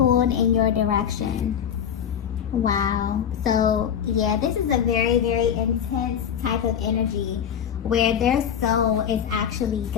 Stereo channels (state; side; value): quieter; right; 8.6 dB